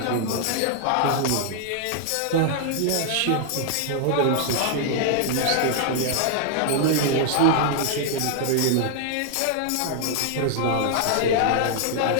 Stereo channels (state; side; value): different; both; correlation -0.01